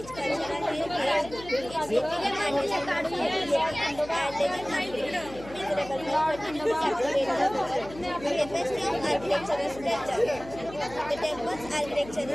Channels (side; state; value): left; noise; hum, 16 dB below the sound